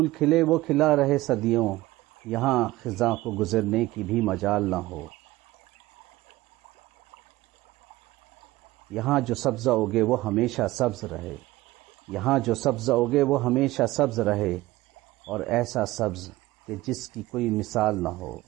کھلے وہ کھلا رہے صدیوں، یہاں خزاں کو گزرنے کی بھی مجال نہ ہو۔ یہاں جو سبزہ اگے وہ ہمیشہ سبز رہے، یہاں جو سبزہ اگے وہ ہمیشہ سبز رہے، اور ایسا سبز کہ جس کی کوئی مثال نہ ہو۔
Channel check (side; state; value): left; quieter; 18.2 dB